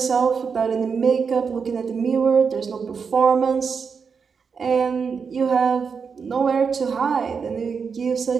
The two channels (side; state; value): left; quieter; 5.8 dB